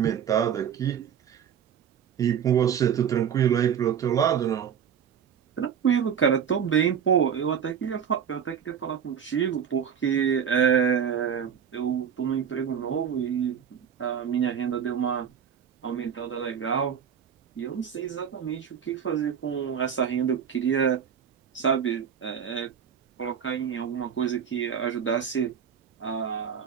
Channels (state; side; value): quieter; left; 8.0 dB